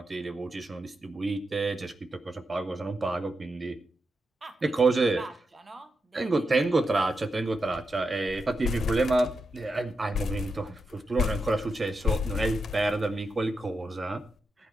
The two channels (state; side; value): normal; both; correlation 0.86